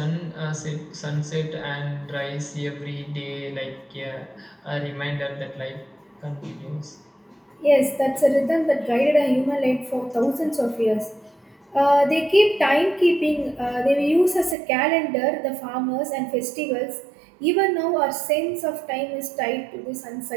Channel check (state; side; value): drops out; left; at 14.6 s